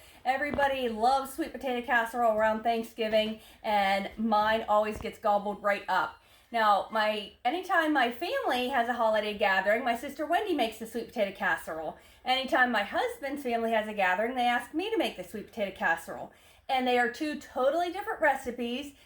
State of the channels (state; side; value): identical; both; correlation 1.00